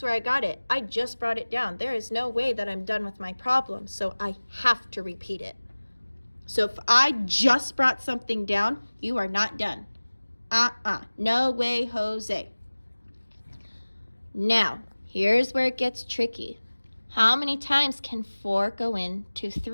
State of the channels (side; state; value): both; inverted; correlation -1.00